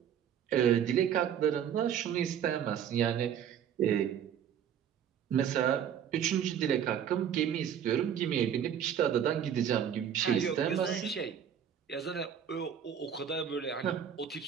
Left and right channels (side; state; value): left; quieter; 8.9 dB